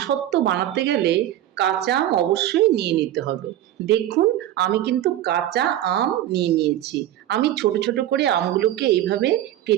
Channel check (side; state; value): left; quieter; 12.8 dB